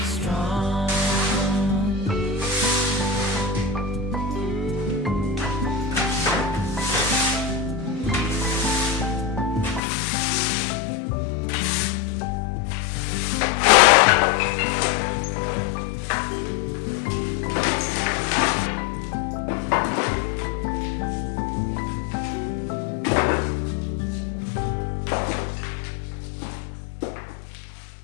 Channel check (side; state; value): right; drops out; at 9.8 s